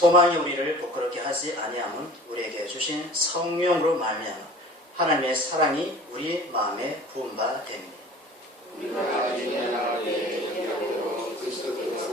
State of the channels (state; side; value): normal; both; correlation 0.44